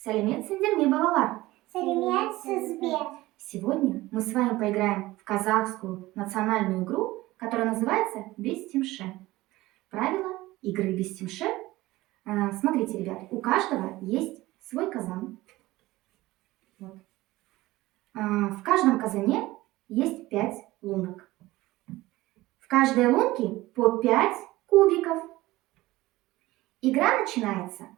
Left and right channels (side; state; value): left; quieter; 18.3 dB